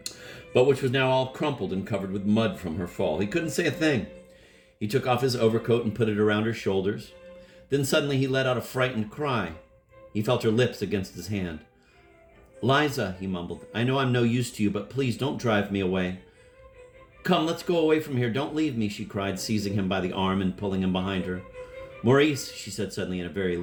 but which was now all crumpled and covered with mud from her fall. He couldn't say a thing. He took off his overcoat and put it around her shoulders. Then suddenly he let out a frightened cry. He felt her lips against his hand. "Liza," he mumbled, "I know I'm no use to you, but please don't drive me away." "Come, let's go away from here. Don't leave me," she cried, seizing him by the arm and pulling him behind her. "Maurice," she said suddenly in a very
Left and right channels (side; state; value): both; identical; correlation 1.00